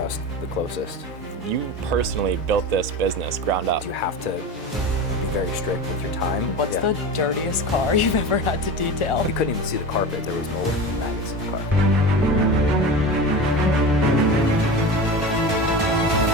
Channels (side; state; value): both; normal; correlation 0.28